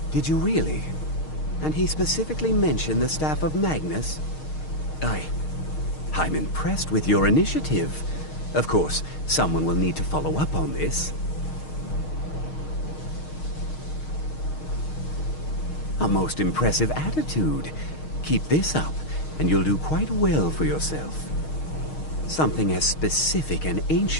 Did you really? And he specifically mentioned the staff of Magnus? I'm impressed with your initiative. Of course, someone will need to follow up on this. A most impressive attitude. Keep this up, and you'll do quite well for yourself. Something as specific and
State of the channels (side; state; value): right; late; 6.5 ms